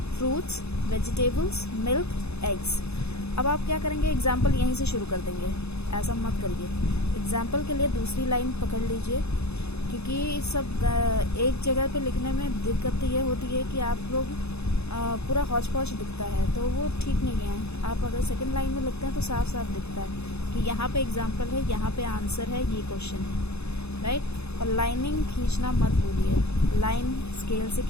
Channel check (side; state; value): right; late; 0.80 ms